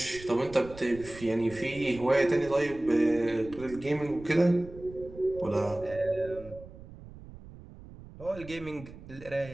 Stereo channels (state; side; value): noise; right; rumble, 17 dB below the sound